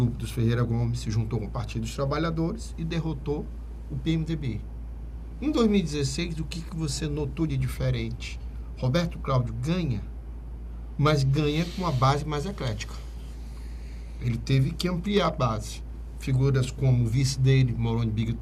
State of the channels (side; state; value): both; identical; correlation 1.00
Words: dos Ferreira Gomes se juntou com o Partido dos Trabalhadores e derrotou o PMDB. Em 2016, o que você notou de diferente? Roberto Cláudio ganha, mas ganha com uma base mais eclética. Ele teve que ampliar a base. Figuras como o vice dele, Moroni